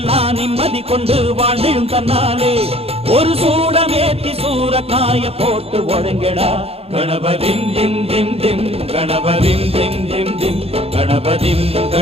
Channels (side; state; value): left; late; 0.29 ms